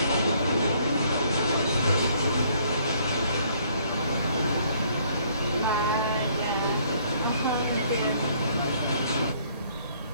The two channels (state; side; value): inverted; both; correlation -0.64